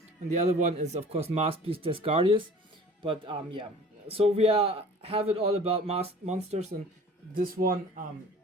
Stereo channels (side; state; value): both; normal; correlation 0.46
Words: and the other one is of course Masked Beast Desgardius. But yeah. So we have it all about masked monsters, and this one